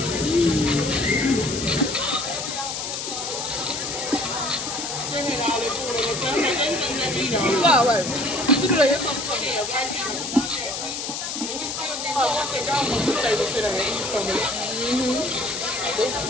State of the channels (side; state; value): left; noise; hiss, 4 dB below the sound